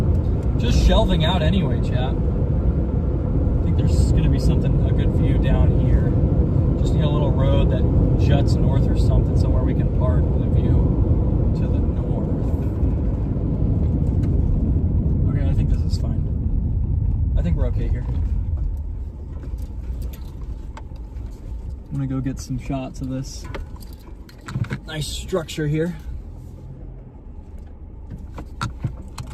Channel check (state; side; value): identical; both; correlation 1.00